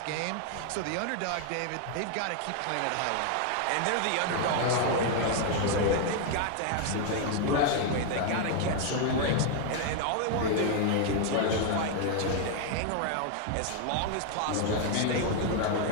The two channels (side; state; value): both; different; correlation 0.01